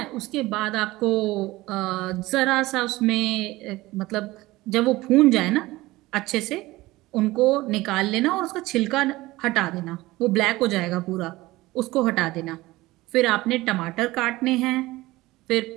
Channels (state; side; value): quieter; left; 19.1 dB